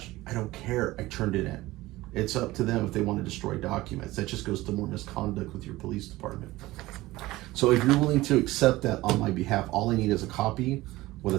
I don't care. I turned it in. It's up to them if they want to destroy documents. That just goes to more misconduct with your police department. So if you're willing to accept that on my behalf, all I need is a copy with a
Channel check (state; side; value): quieter; left; 18.3 dB